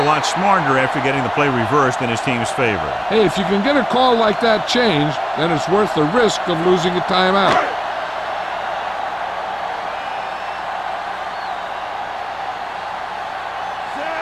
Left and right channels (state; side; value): identical; both; correlation 1.00